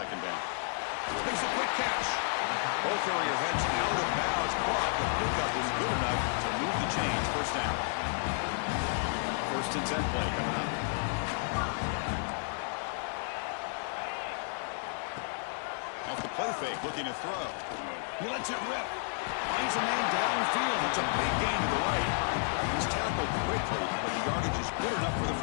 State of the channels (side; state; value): right; silent; 57 dB below the other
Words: down. Makes a quick catch. Both area heads out of bounds, but the pickup is good enough to move the chains. First down. First and 10 play coming up. Off the play fake, looking to throw. He lets it rip. Finds a man downfield. It's a big gain to the right. He's tackled quickly, but the yardage is good enough for the